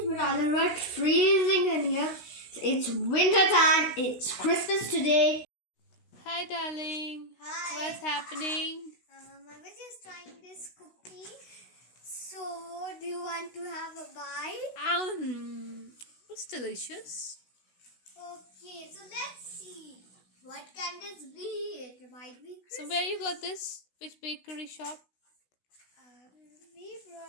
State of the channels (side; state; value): right; late; 16 ms